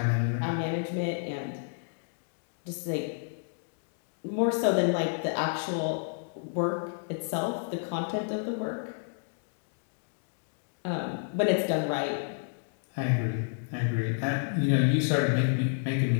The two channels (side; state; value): right; silent; digital silence